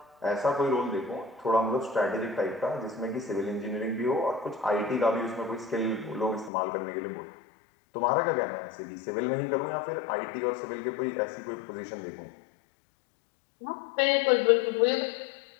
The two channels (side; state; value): right; drops out; at 6.5 s